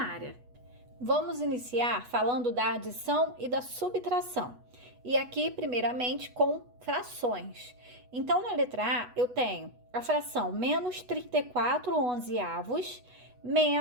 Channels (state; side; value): late; left; 8.1 ms